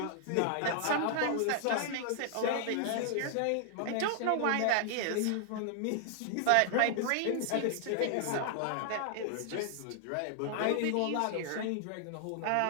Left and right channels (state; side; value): different; both; correlation -0.01